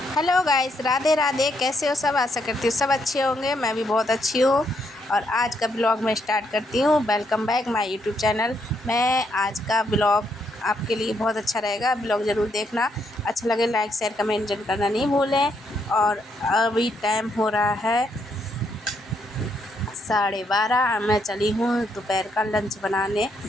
Hello guys, Radhe Radhe. कैसे हो सब? आशा करती हूँ सब अच्छे होंगे। मैं भी बहुत अच्छी हूँ। और आज का ब्लॉग मैं स्टार्ट करती हूँ। Welcome back my YouTube channel. मैं आज का ब्लॉग आपके लिए बहुत अच्छा रहेगा। ब्लॉग ज़रूर देखना। अच्छा लगे लाइक शेयर कमेंट जरूर करना नहीं भूलें। और अभी टाइम हो रहा है 12:30। मैं चली हूँ दोपहर का लंच बनाने,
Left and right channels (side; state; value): both; normal; correlation 0.75